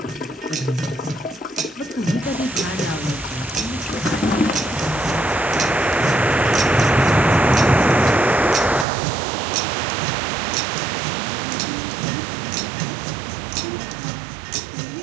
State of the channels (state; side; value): drops out; left; at 8.8 s